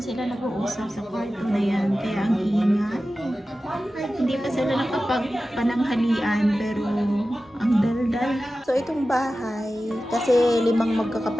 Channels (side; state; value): both; normal; correlation 0.94